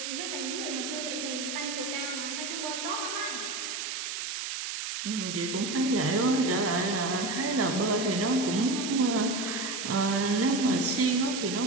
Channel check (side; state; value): right; noise; hiss, 4 dB below the sound